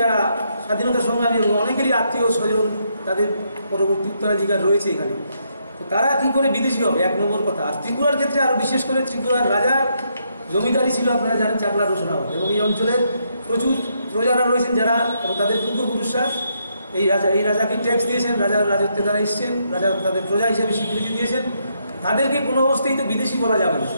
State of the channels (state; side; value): inverted; both; correlation -0.76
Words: স্বাধীনতা সংগ্রামী এবং অনেকেরই আত্মীয় স্বজন তাদের পরবর্তী উত্তরাধিকার রয়েছে এখানে, তো তারা কি করে বিদেশি হবে এক নম্বর কথা। আর ত্রিপুরার ক্ষেত্রে আরও বিশেষ করে ত্রিপুরার রাজার জমিদারি ছিল আপনারা জানেন চাকলা রোশনাবাদ, এবং এই অঞ্চলের প্রচুর প্রজারা রয়েছেন যারা এবং তাদের পূর্বপুরুষরা এই রাজাকে ট্যাক্স দিয়েছেন, রাজার রাজত্বে তারা এসছেন, রাজা তাদের প্রজা হিসেবে স্বীকৃতি দিয়েছেন, তাদেরকে কোনো অবস্থায় তো বিদেশি বলা যাবে না।